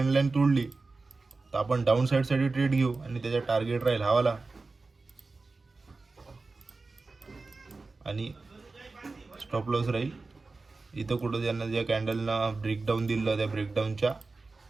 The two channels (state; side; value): quieter; left; 3.7 dB